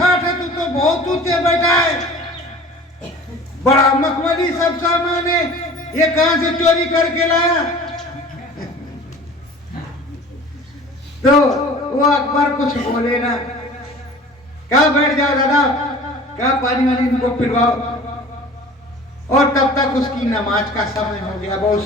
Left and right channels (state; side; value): normal; both; correlation 0.43